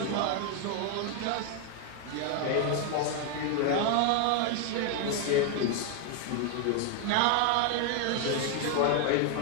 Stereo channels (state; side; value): different; both; correlation 0.00